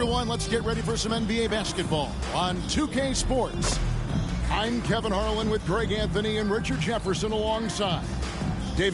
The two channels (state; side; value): identical; both; correlation 1.00